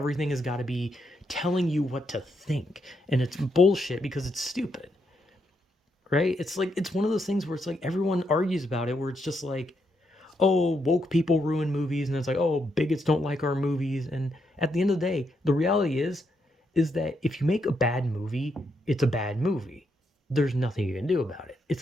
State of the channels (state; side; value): normal; both; correlation 0.79